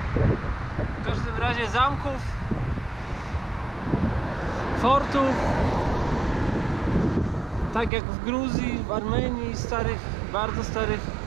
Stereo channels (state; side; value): drops out; left; at 7.9 s